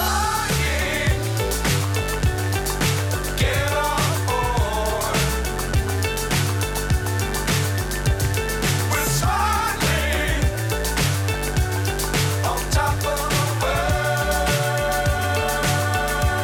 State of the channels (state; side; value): identical; both; correlation 1.00